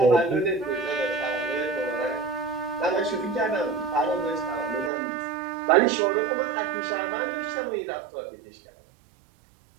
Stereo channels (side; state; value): left; drops out; at 4.9 s